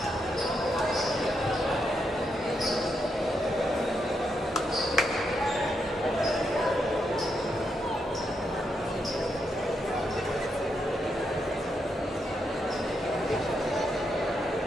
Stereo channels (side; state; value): both; normal; correlation 0.81